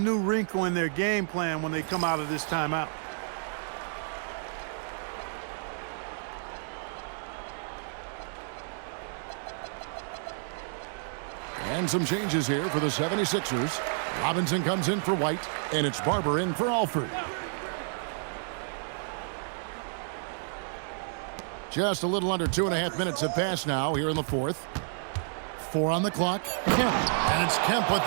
wrinkle in their game plan when they come out of this timeout. And some changes here for the 76ers. Robinson comes in for White, and it's Barber in for Alford. Just a little under 2.5 minutes have passed now here in the fourth. 4 on the clock. Kemp. And it's Kemp with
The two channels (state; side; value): silent; left; digital silence